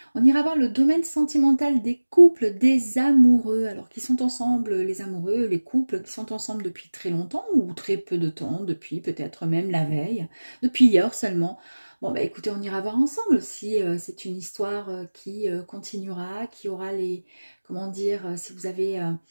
On ira voir le domaine sentimental des couples, des amoureux, alors qui sont ensemble, les amoureux, les couples qui sont ensemble depuis très longtemps ou très peu de temps, depuis peut-être même la veille, depuis hier seulement. Bon bah écoutez, on ira voir ensemble si c'est une histoire qui continuera, qui aura les, comment dire, si vous avez,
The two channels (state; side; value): inverted; both; correlation -1.00